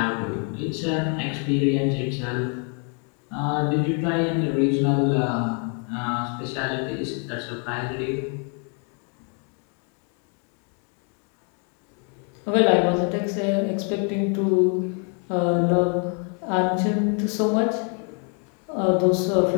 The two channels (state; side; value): quieter; right; 39.4 dB